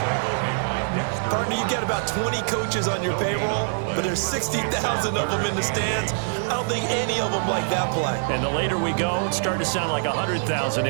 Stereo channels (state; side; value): silent; left; digital silence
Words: Partner, you got about 20 coaches on your payroll, but there's 60,000 of them in the stands. I don't think any of them like that play. And the later we go, it's starting to sound like 100,000